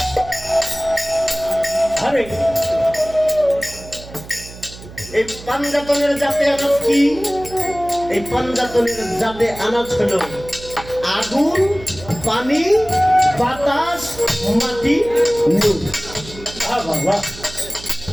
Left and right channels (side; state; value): right; noise; hum, 16 dB below the sound